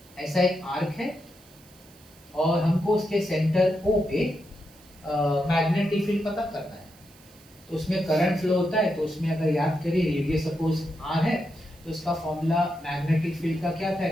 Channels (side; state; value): right; noise; hiss, 25 dB below the sound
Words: ऐसा एक आर्क है और हमको उसके सेंटर O पे मैग्नेटिक फील्ड पता करना है। तो उसमें करंट फ्लो होता है, तो उसमें अगर याद करिए रेडियस सपोज r है, तो इसका फॉर्मूला मैग्नेटिक फील्ड का क्या था,